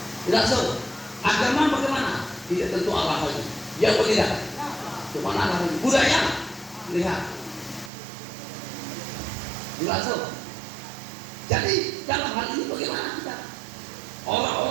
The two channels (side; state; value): left; drops out; at 7.9 s